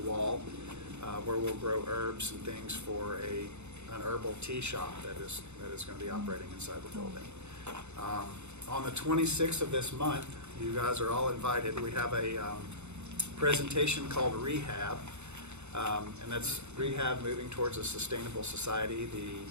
wall, where we'll grow herbs and things for an herbal tea shop that is going to be operating inside the building. On the 26th of this month, you guys are all invited. We have a presentation called Rehab, and that's Rehab Moving Towards a Sustainable Society.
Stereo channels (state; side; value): late; left; 0.82 ms